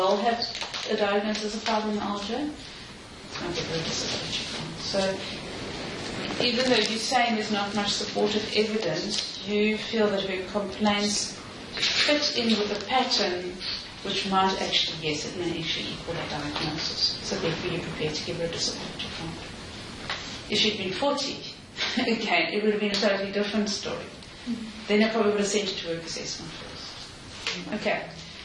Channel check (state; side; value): identical; both; correlation 1.00